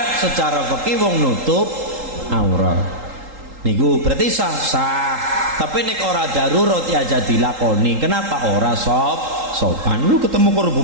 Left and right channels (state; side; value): late; left; 3.8 ms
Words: Secara fikih wong nutup aurat. Niku berarti sah. Tapi nek ora darurat ya aja dilakoni. Kenapa? Ora sopan. Lu ketemu karo